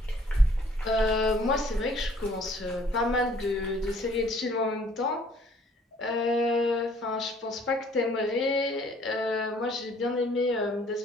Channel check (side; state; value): both; normal; correlation 0.59